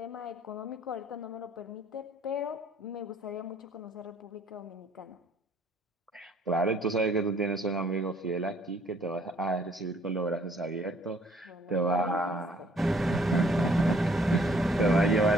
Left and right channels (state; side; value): normal; both; correlation 0.62